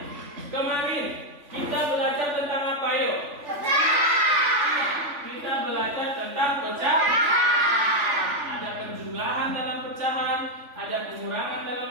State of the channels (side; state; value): left; late; 3.5 ms